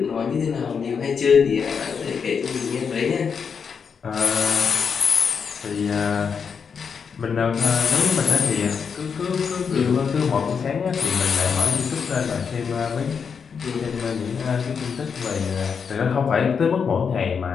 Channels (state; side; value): quieter; right; 6.3 dB